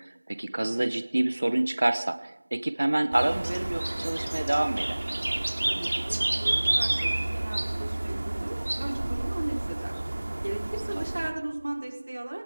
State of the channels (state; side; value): inverted; both; correlation -1.00